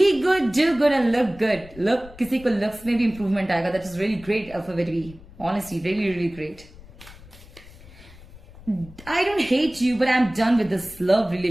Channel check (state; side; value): noise; left; rumble, 20 dB below the sound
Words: good, do good and look good. Look, किसी को लुक्स में भी इंप्रूवमेंट आएगा. That is really great alphabet B. Honestly, really, really great. I don't hate you, but I'm done with this love